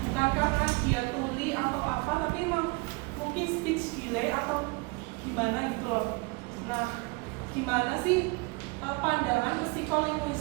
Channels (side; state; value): left; quieter; 28.7 dB